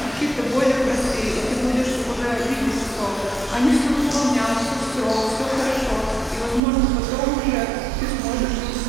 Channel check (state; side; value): drops out; left; at 6.6 s